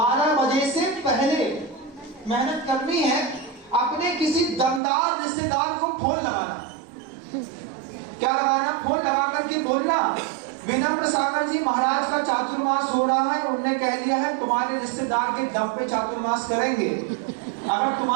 बजे से पहले मेहनत करनी है। अपने किसी दमदार रिश्तेदार को फोन लगाना आकर के बोलना, विनम्र सागर जी महाराज का चातुर्मास हो रहा है, उन्होंने कह दिया है तुम्हारे रिश्तेदार के दम पे चातुर्मास करेंगे, अगर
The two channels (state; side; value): drops out; left; at 4.8 s